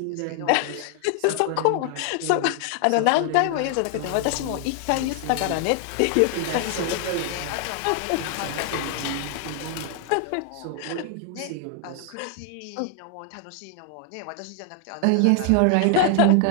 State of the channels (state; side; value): different; both; correlation 0.00